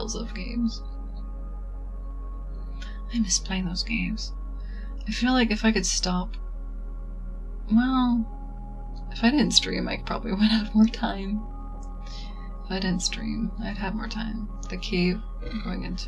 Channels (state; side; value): identical; both; correlation 1.00